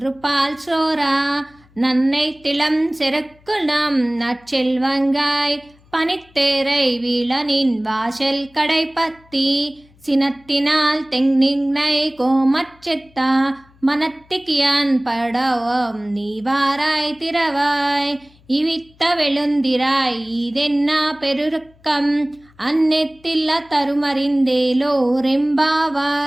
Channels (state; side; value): noise; left; hum, 29 dB below the sound